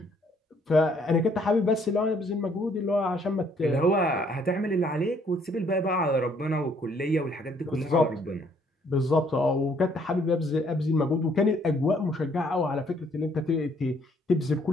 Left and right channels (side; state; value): both; normal; correlation 0.65